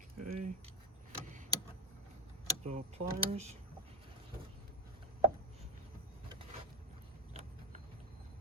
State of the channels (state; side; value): normal; both; correlation 0.15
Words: Okay. The pliers.